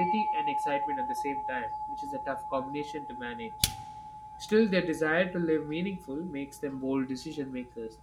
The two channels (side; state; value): both; identical; correlation 1.00